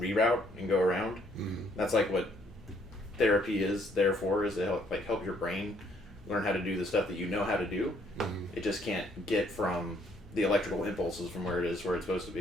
and go around. That's like what therapy is there for, is to help your brain learn how to do the stuff that you know how to do. It just can't get from the electrical impulses from where it is where it's supposed to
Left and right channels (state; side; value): normal; both; correlation 0.66